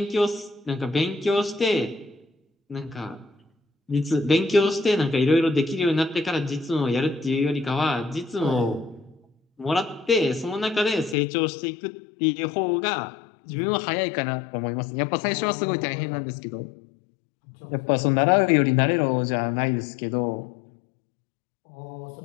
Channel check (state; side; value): drops out; right; at 11.2 s